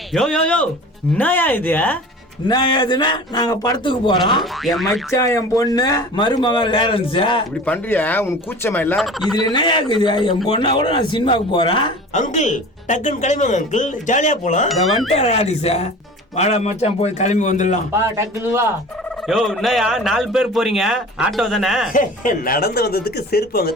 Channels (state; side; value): normal; both; correlation 0.39